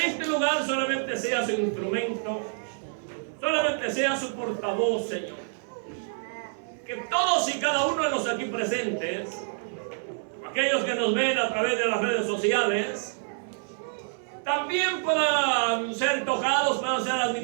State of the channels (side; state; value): left; silent; 58 dB below the other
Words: este lugar solamente sea su instrumento, solamente sea su portavoz, Señor. Que todos y cada uno de los aquí presentes, aquellos que nos ven a través de las redes sociales, también puedan ser tocados, puedan ser